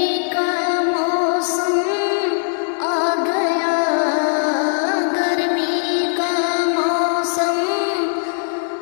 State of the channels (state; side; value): silent; right; digital silence